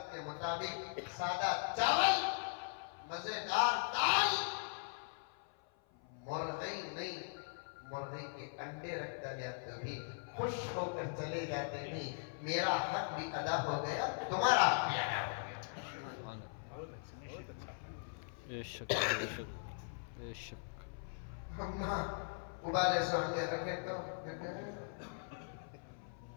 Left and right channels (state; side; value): silent; right; 51 dB below the other